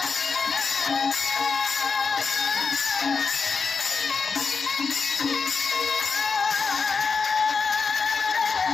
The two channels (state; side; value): quieter; right; 5.2 dB